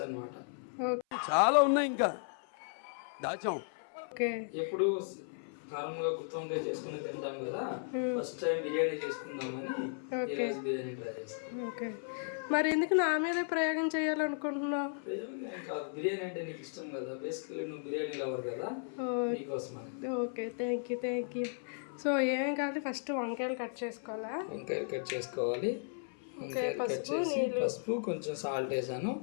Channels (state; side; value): silent; right; 54 dB below the other